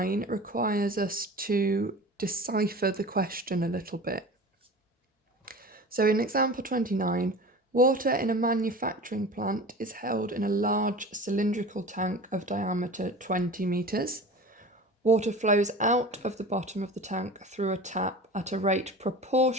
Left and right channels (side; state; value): both; normal; correlation 0.36